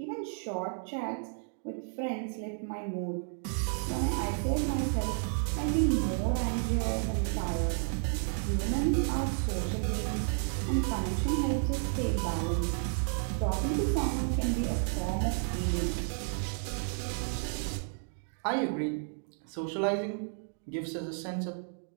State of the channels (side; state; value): left; silent; 56 dB below the other